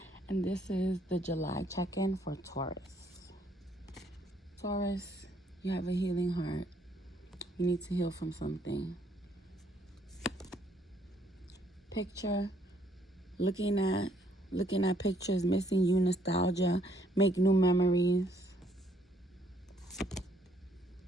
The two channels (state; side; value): normal; both; correlation 0.68